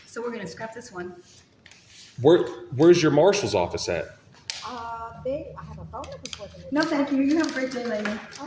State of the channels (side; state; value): both; identical; correlation 1.00